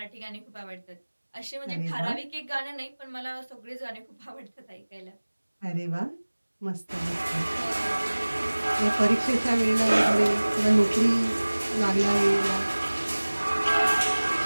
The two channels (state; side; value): inverted; both; correlation -1.00